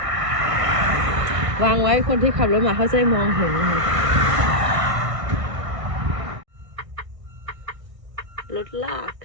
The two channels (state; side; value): late; left; 1.6 ms